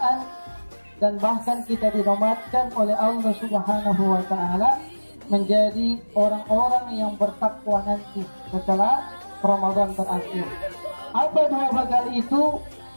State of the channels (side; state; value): both; inverted; correlation -1.00